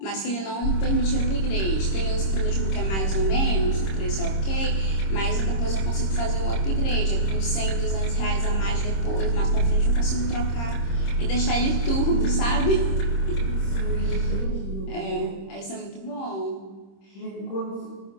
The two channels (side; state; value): right; late; 26 ms